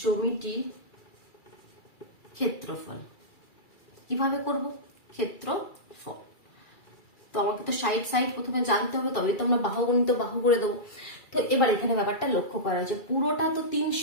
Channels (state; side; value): late; right; 2.3 ms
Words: জমিটি ক্ষেত্রফল। কিভাবে করব, ক্ষেত্রফল। তো আমাকে তো সাইড প্রথমে জানতে হবে, তবে তো আমরা বাহু গণিত বাহু করে দেবো। তো এবার এখানে ব্যাপারটা লক্ষ্য করা হয়েছে, পুরোটা তো